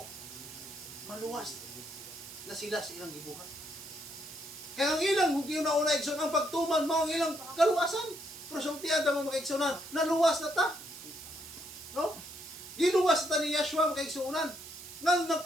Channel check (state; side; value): noise; right; hiss, 13 dB below the sound